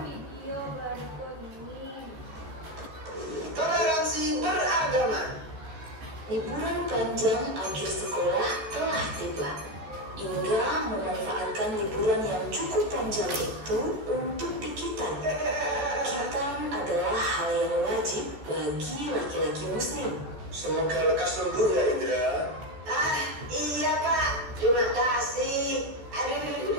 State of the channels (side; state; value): left; late; 14 ms